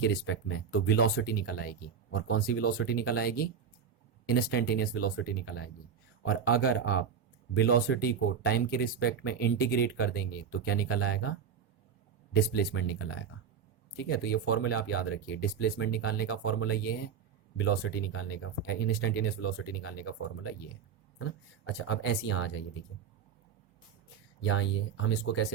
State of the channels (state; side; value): quieter; left; 7.2 dB